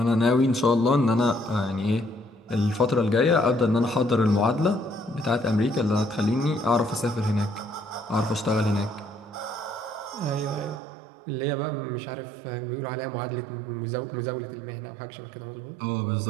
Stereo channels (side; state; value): left; drops out; at 10.8 s